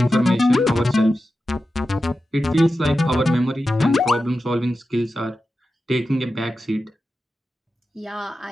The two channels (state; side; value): normal; both; correlation 0.92